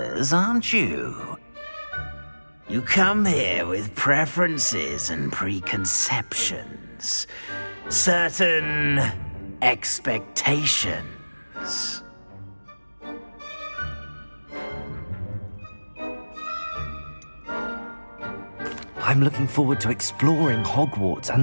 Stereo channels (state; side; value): inverted; both; correlation -1.00